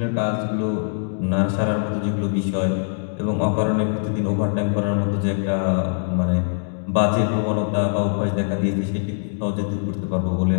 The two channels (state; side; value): silent; right; digital silence